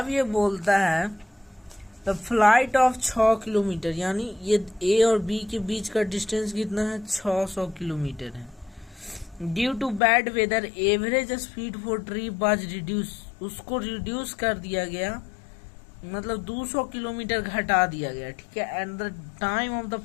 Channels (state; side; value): drops out; right; at 10.0 s